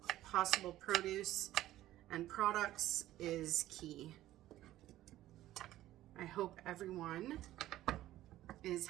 possible produce and products is key. I hope everyone is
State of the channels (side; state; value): left; quieter; 14.6 dB